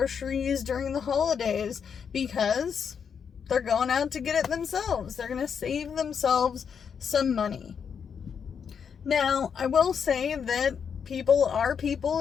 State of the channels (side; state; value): right; quieter; 7.0 dB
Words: during the holidays because they're going out to get it themselves. They're going to save themselves some money. Now, I will say that people are people,